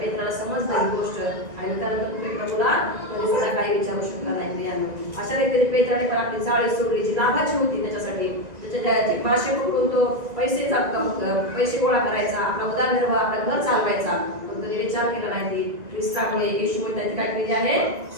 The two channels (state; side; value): late; left; 1.9 ms